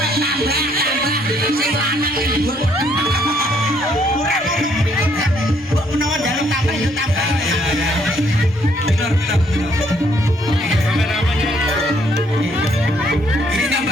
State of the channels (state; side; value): normal; both; correlation 0.68